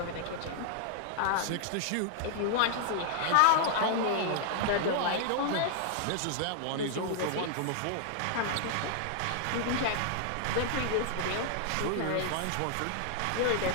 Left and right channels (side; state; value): both; different; correlation -0.01